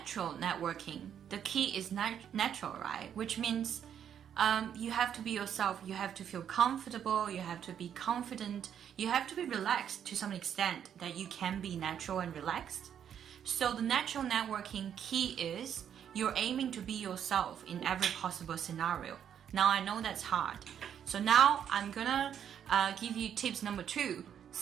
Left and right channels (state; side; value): quieter; left; 8.9 dB